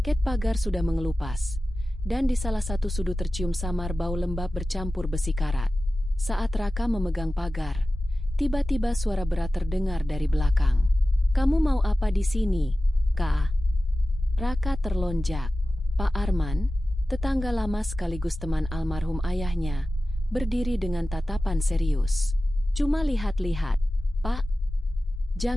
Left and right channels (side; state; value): both; normal; correlation 0.95